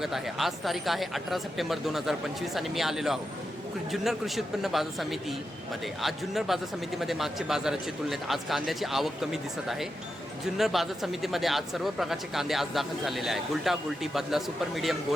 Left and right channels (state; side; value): normal; both; correlation 0.88